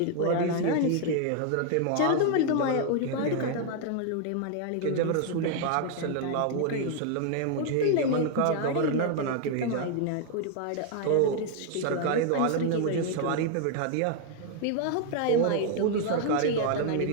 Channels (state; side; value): different; both; correlation 0.00